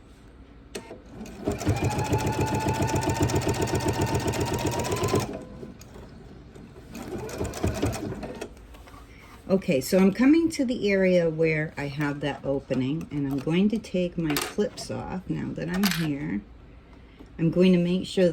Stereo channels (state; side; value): identical; both; correlation 1.00